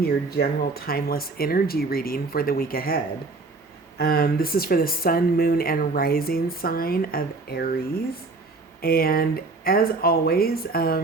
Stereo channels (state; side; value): quieter; left; 3.6 dB